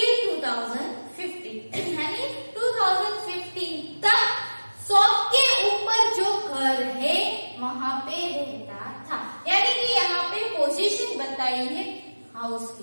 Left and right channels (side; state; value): both; inverted; correlation -1.00